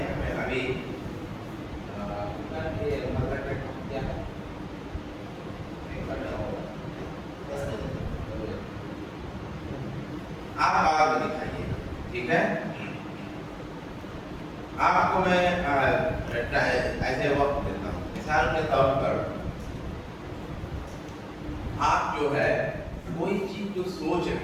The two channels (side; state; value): both; identical; correlation 1.00